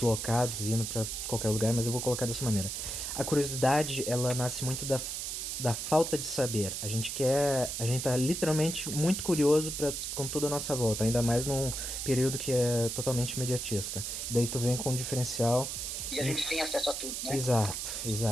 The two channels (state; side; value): noise; right; hiss, 4 dB below the sound